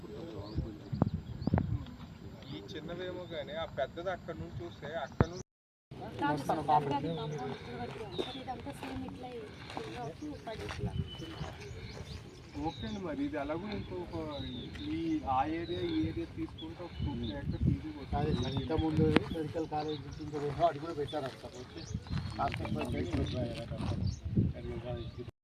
ఈ చిన్నవేమో కానీ ఆ పెద్దది అక్కడ నుంచి చూస్తే అక్కడ నుంచి ఓకే అండి. మరి ఇది ఎలాగో ఇంకొక ఆ ఏరియా తీసుకుంటే ఒక 2 acres ఈజీ వస్తుంది. ఇంతకుముందు మెడికల్ కాలేజ్ అది కూడా పెట్టారు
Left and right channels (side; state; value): both; identical; correlation 1.00